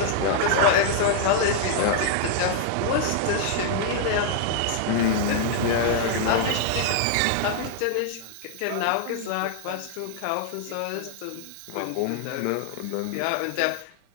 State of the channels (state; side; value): different; both; correlation -0.01